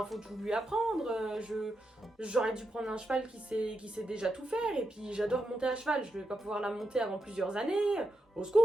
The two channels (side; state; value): both; normal; correlation 0.85